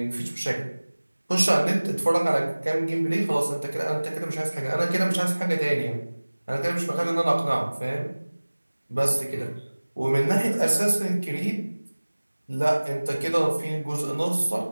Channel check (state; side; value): inverted; both; correlation -1.00